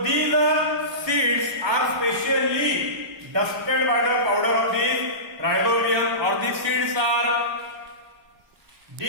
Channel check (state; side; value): late; left; 1.2 ms